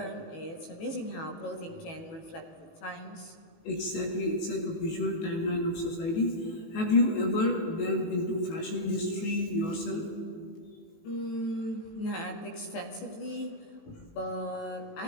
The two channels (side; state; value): right; late; 18 ms